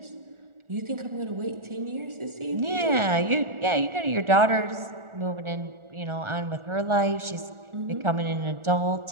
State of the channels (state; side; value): late; left; 1.4 ms